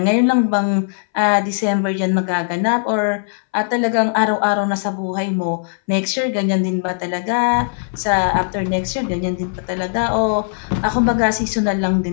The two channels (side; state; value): right; silent; 63 dB below the other